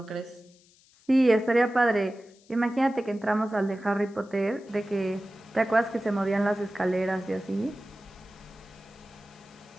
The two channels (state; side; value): noise; left; hiss, 30 dB below the sound